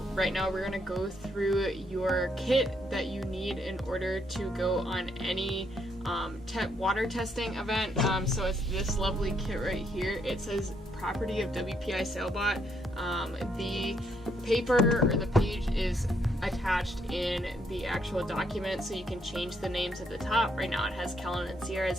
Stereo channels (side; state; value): both; normal; correlation 0.74